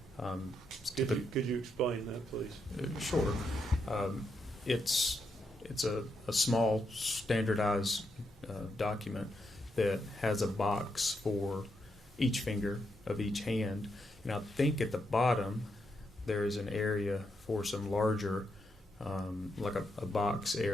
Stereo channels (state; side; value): normal; both; correlation 0.81